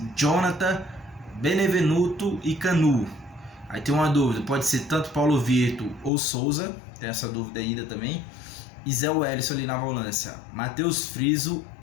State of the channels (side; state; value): right; drops out; at 6.1 s